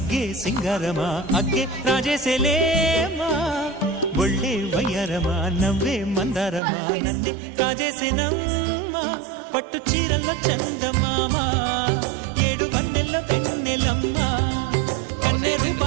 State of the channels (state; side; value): drops out; left; at 6.6 s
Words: సింగారమా అగ్గే రాజేసేలేమా ఒళ్ళే వయ్యారమా నవ్వే మందారమా నన్నే కాజేసేనమ్మా పట్టు చీరల్లో చందమామా ఏడు వన్నెల్ల వెన్నెలమ్మా కన్నె